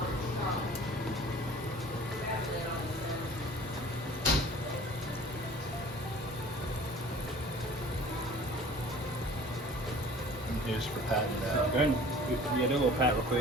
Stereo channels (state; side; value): normal; both; correlation 0.47